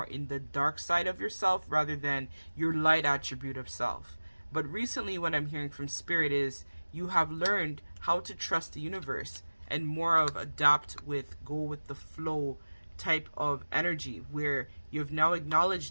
in the dark side of yourself rather than your light attribute of self. But recently what I'm hearing from Spirit is you have learned how to trust the universe and more of adapt with, go with the flow type of energy, where you've now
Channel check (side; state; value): both; inverted; correlation -1.00